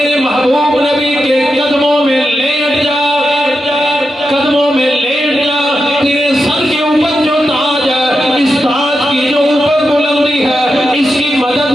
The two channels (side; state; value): both; normal; correlation 0.88